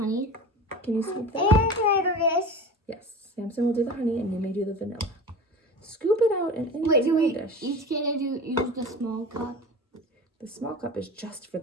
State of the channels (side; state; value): both; normal; correlation 0.34